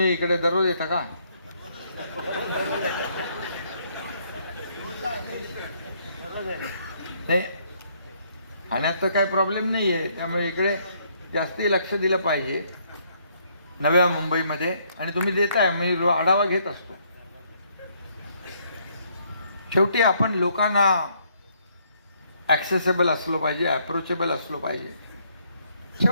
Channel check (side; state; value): both; inverted; correlation -0.69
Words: इकडे दररोज येता का? नाही, खाण्यात तर काही प्रॉब्लेम नाही आहे, त्यामुळे इकडे जास्ती लक्ष दिलं पाहिजे नव्या मुंबईमध्ये. आणि तुम्ही देताय, मी आढावा घेत असतो. शेवटी आपण लोकांना ॲक्सेसेबल असलो पाहिजे, अप्रोचेबल असलो पाहिजे.